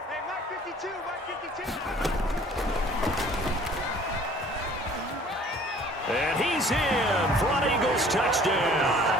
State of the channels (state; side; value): normal; both; correlation 0.52